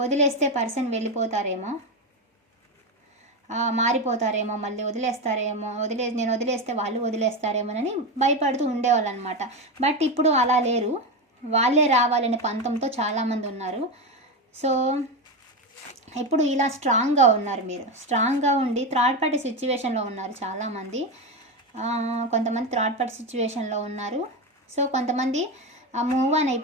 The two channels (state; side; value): normal; both; correlation 0.15